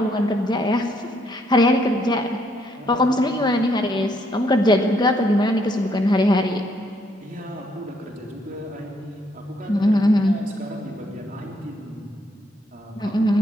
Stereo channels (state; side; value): normal; both; correlation 0.71